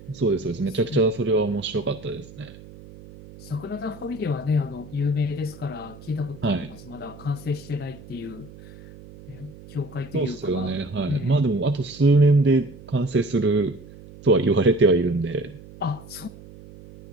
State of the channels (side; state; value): right; noise; hum, 18 dB below the sound